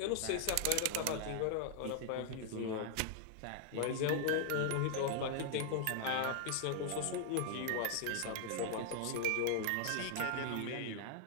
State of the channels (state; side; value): different; both; correlation 0.00